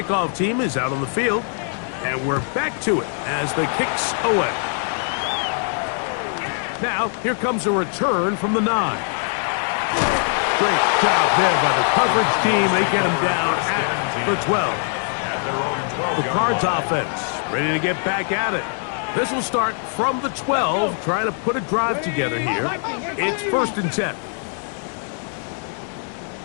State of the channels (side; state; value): right; silent; 59 dB below the other